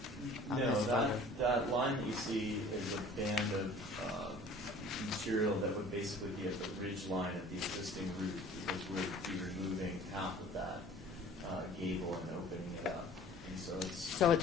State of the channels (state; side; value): normal; both; correlation 0.48